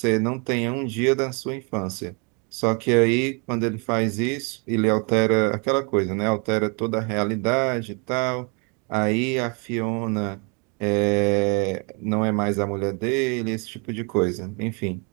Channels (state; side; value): quieter; left; 34.4 dB